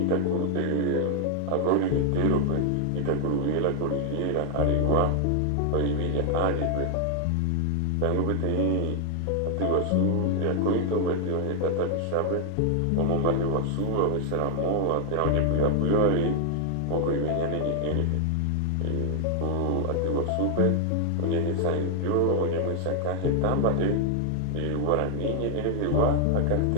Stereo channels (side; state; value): both; different; correlation 0.00